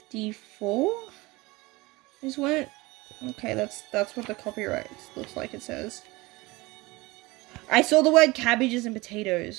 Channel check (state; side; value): quieter; left; 22.4 dB